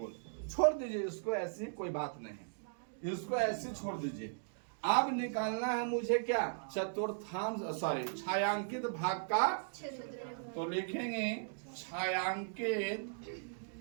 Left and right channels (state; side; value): silent; left; digital silence